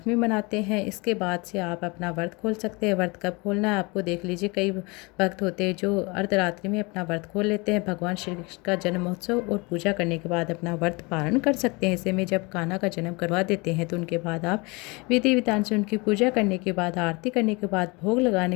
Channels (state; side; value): quieter; right; 27.0 dB